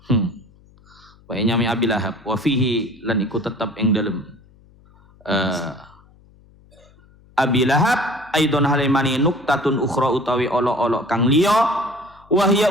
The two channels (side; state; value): left; noise; hum, 28 dB below the sound